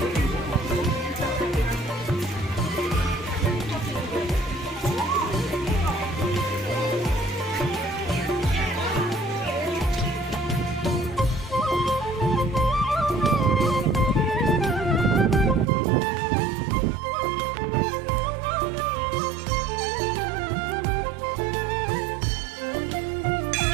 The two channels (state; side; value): drops out; left; at 15.7 s